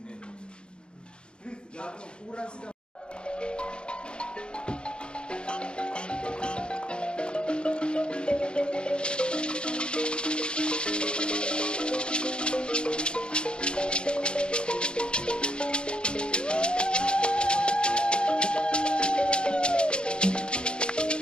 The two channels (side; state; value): right; late; 0.053 ms